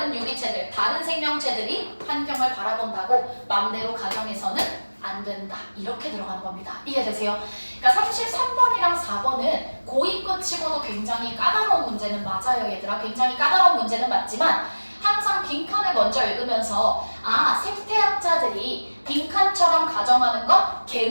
유기체들, 다른 생명체들이 환경을 바라본다고 맘대로 가정해서는 안 된다. 이렇게 들어가는 겁니다. 이해되세요? 그러니까 33번이랑 4번은 고의껏 치고도 굉장히 까다로운 문제는 맞아요 얘들아. 굉장히 까다로운 문제는 맞지만 항상 빈칸을 먼저 읽으면서 생태학자들이 빈칸처럼 가정하는 건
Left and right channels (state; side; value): inverted; both; correlation -1.00